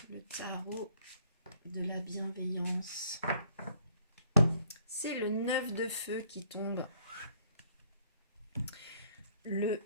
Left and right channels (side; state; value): both; inverted; correlation -0.63